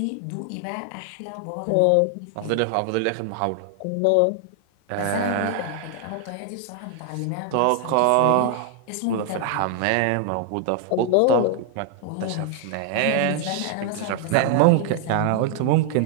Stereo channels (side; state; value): both; different; correlation 0.00